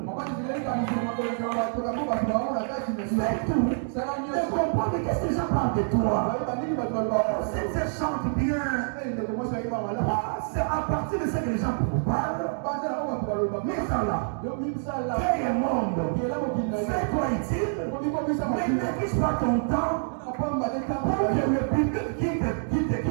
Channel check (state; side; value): silent; left; digital silence